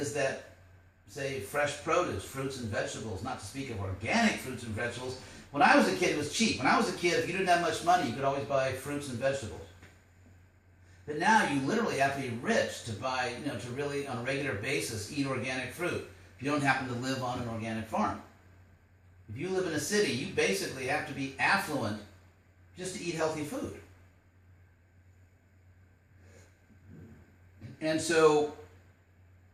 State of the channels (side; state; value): both; identical; correlation 1.00